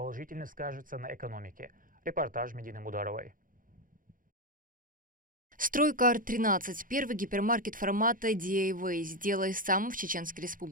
скажется на экономике. Репортаж Медины Мударовой. «Стройкар-13» – первый гипермаркет формата DIY, сделай сам в Чеченской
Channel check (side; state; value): left; late; 0.40 ms